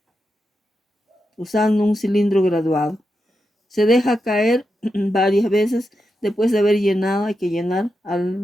usando un cilindro graduado. Se deja caer varias veces. Después de haber llenado, hay que llenar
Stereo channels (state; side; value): normal; both; correlation 0.87